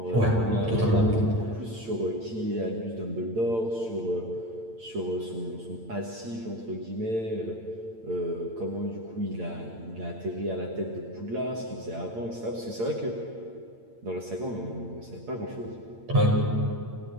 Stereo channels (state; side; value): late; left; 8.8 ms